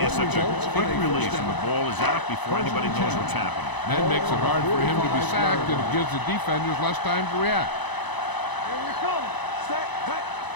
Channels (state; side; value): late; right; 1.0 ms